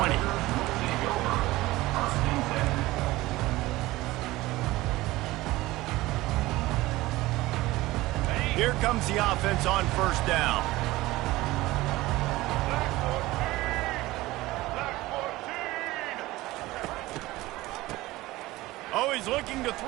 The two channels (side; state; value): left; quieter; 18.6 dB